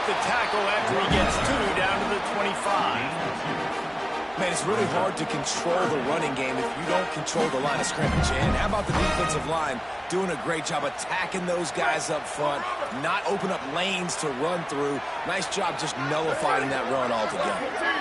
the tackle after he gets 2 down to the 25. Man, it's really hard to control the running game if you don't control the line of scrimmage. And how about the defensive line doing a great job attacking those guys up front, not open up lanes to run through. Nice job just nullifying that run altogether.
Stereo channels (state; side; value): identical; both; correlation 1.00